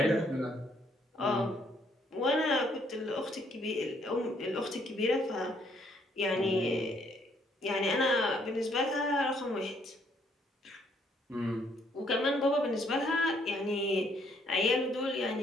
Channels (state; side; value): normal; both; correlation 0.68